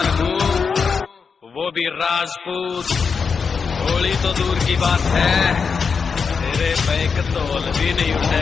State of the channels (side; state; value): right; quieter; 5.6 dB